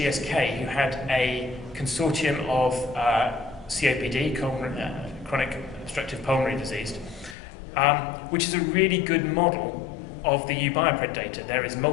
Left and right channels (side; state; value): right; drops out; at 7.4 s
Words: who had a consortium of COPD, chronic obstructive pulmonary disease, which is a really good model of the U-BIOPRED data. There is